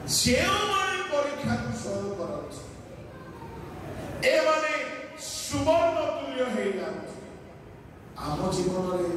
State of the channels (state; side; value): identical; both; correlation 1.00